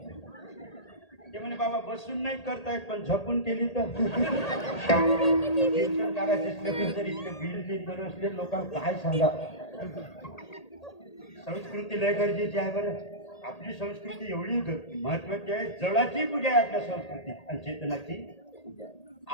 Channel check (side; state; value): right; late; 1.8 ms